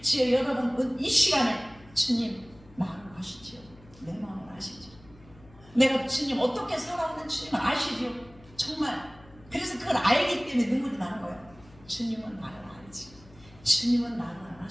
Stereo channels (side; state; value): left; noise; hum, 24 dB below the sound